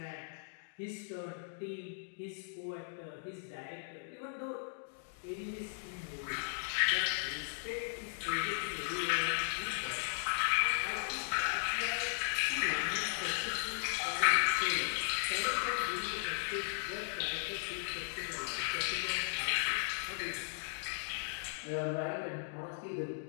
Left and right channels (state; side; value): silent; right; digital silence